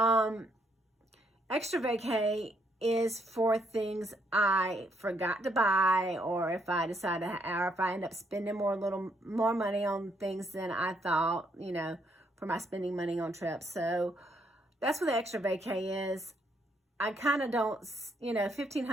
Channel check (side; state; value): both; normal; correlation 0.73